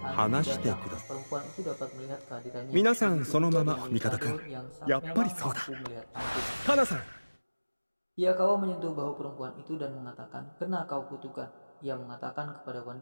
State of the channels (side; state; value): both; inverted; correlation -1.00